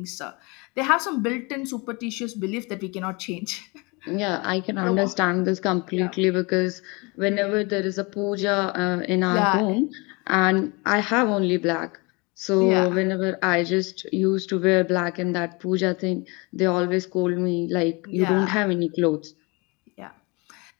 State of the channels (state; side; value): quieter; right; 27.8 dB